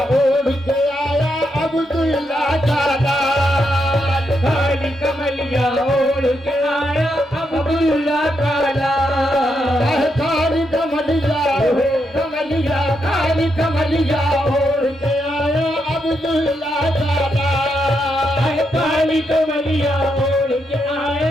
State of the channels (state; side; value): normal; both; correlation 0.81